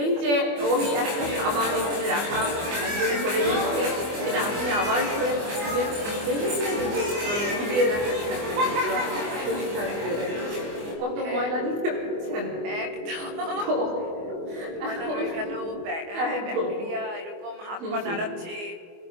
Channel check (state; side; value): late; left; 24 ms